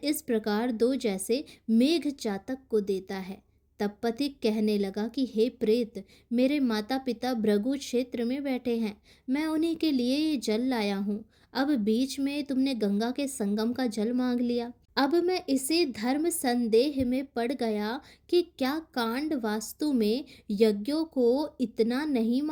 प्रकार दो जैसे मेघ चातक को देता है। तब पथिक कहने लगा कि हे प्रेत, मेरे माता पिता भृगु क्षेत्र में बैठे हैं। मैं उन्हीं के लिए ये जल लाया हूँ। अब बीच में तुमने गंगा के संगम का जल मांग लिया। अब मैं इसी धर्म संदेह में पड़ गया कि क्या कांड वास्तु में यज्ञों को इतना नहीं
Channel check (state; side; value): identical; both; correlation 1.00